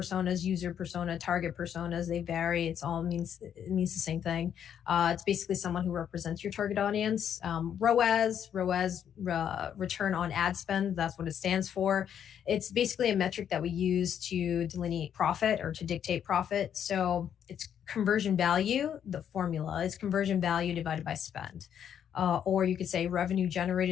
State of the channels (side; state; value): right; quieter; 9.0 dB